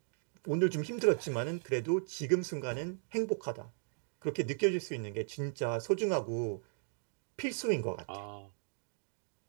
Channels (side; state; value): left; silent; digital silence